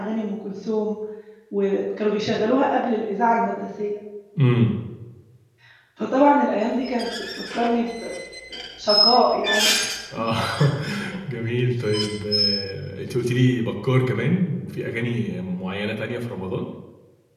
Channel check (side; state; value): both; identical; correlation 1.00